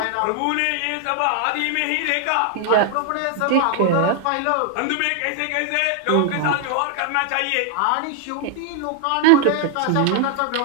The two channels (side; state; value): both; different; correlation 0.00